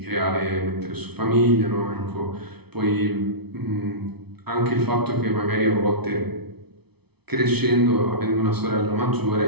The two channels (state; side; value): late; left; 0.98 ms